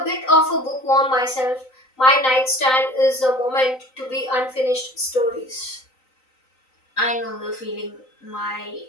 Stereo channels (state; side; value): late; right; 3.9 ms